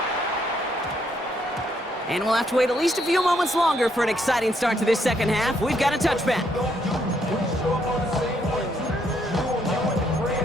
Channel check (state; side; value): normal; both; correlation 0.73